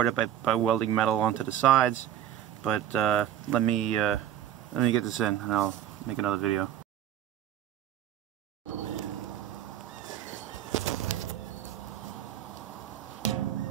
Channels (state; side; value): quieter; left; 11.0 dB